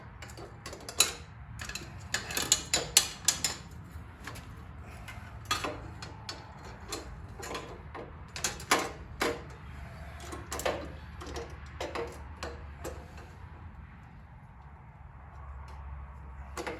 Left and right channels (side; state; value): both; identical; correlation 1.00